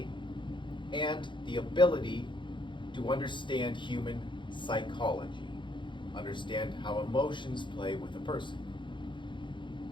and the ability to understand human psychology, understand how emotions play with a person.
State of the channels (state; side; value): late; right; 0.23 ms